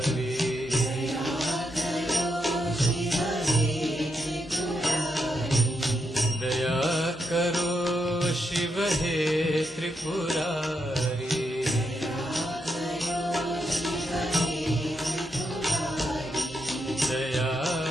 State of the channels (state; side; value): normal; both; correlation 0.82